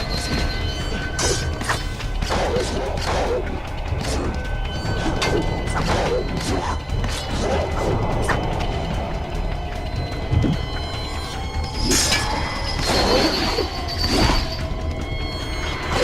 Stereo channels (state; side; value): identical; both; correlation 1.00